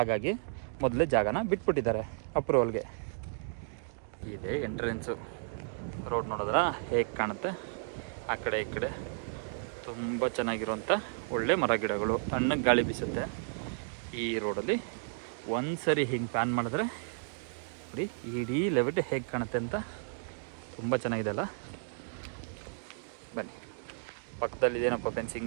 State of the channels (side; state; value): left; silent; digital silence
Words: ಮೊದಲೇ ಜಾಗನ ಬಿಟ್ಬಿಟ್ಟಿದ್ದಾರೆ ಅಪ್ರೂವಲ್ಗೆ. ಇದೆ ಎಂಟ್ರೆನ್ಸು. ರೋಡ್ ನೋಡಿದ್ರ ಹೇಗೆ ಕಾಣುತ್ತೆ. ಆ ಕಡೆ ಈ ಕಡೆ ತುಂಬ ಚೆನ್ನಾಗಿರುವಂಥ ಒಳ್ಳೆ ಮರ ಗಿಡಗಳು, ತಣ್ಣಗೆ ಗಾಳಿ ಬೀಸುತ್ತೆ. ಈ ರೋಡಲ್ಲಿ ಒಂದು ಸರಿ ಹಿಂಗೆ ಪ್ಯಾನ್ ಮಾಡಿದ್ರೆ ನೋಡಿ ಇಡೀ ಲೆವೆಟ್ ಹೇಗೆ ಕಾಣುತ್ತೆ ಅಂತ. ತುಂಬ ಚೆನ್ನಾಗಿದೆ ಅಲ್ಲ. ಬನ್ನಿ, ಪಕ್ಕದಲ್ಲಿ ಇದೇನಪ್ಪ